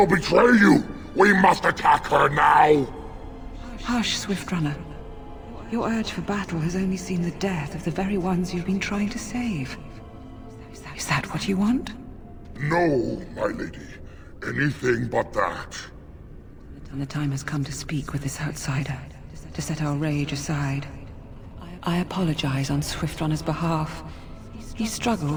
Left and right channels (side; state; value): both; identical; correlation 1.00